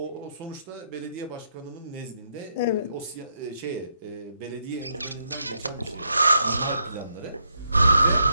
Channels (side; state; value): both; inverted; correlation -0.77